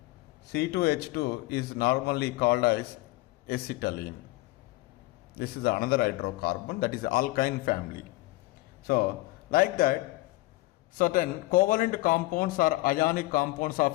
C2H2 is normally called as acetylene. This is another hydrocarbon, that is alkyne family. So, like that, certain covalent compounds or ionic compounds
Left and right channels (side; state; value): right; quieter; 19.8 dB